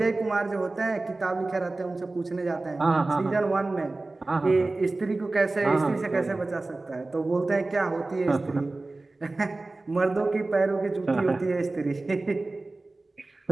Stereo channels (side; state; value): left; quieter; 3.2 dB